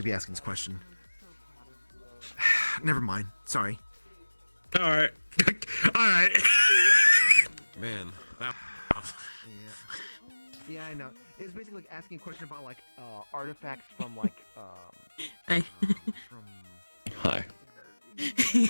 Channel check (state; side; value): inverted; both; correlation -1.00